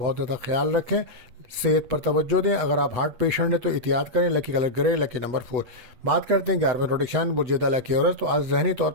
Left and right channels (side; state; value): left; late; 8.3 ms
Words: زیادہ خیال رکھیں. صحت پر توجہ دیں. اگر آپ ہارٹ پیشنٹ ہیں تو احتیاط کریں. لکی کلر گرے، لکی نمبر 4. بات کرتے ہیں 11ویں روٹیشن بجیدہ لکی عورت. تو آج ذہنی طور